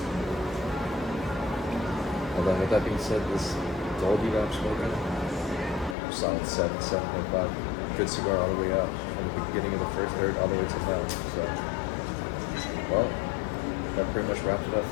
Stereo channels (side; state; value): right; drops out; at 6.0 s